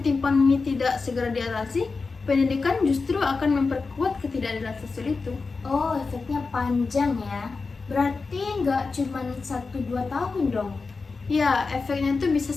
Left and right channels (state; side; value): quieter; right; 4.3 dB